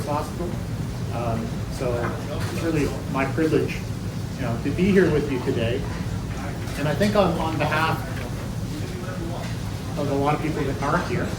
hospital. So it's really my privilege, to be here with you today. And I think on behalf of a lot of people that aren't here,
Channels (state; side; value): identical; both; correlation 1.00